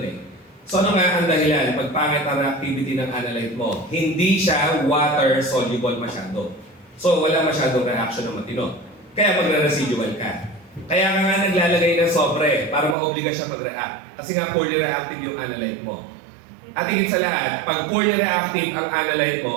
eh. So ano nga ang dahilan? Pag pangit ang reactivity ng analyte mo, hindi siya water soluble masyado. So wala masyadong reaction na matino. Kaya magre-residual ka. Kaya nga naglalagay ng sobre para ma-obliga siya mag-react. Kasi nga poorly reactive yung analyte mo. At higit sa lahat, pag poorly reactive ang analyte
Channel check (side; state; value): left; drops out; at 13.0 s